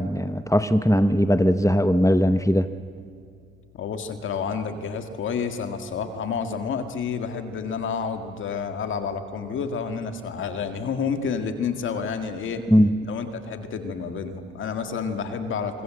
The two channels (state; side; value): noise; left; hum, 29 dB below the sound